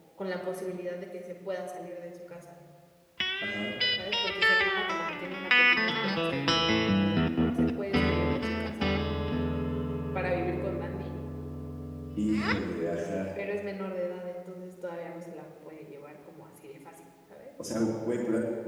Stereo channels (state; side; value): identical; both; correlation 1.00